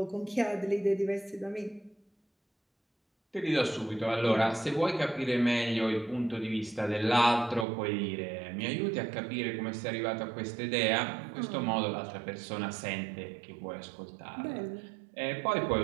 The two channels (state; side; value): drops out; left; at 7.7 s